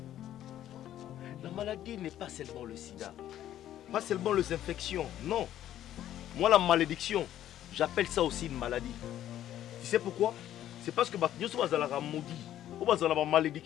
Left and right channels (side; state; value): right; quieter; 12.0 dB